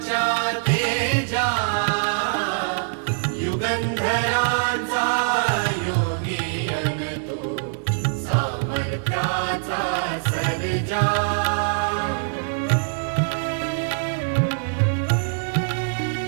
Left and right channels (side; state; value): left; silent; 63 dB below the other